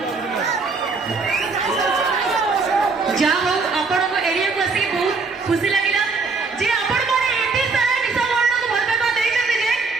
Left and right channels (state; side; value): quieter; left; 4.4 dB